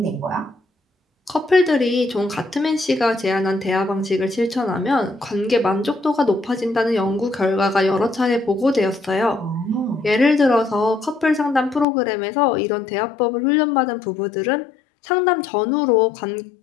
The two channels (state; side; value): drops out; right; at 11.9 s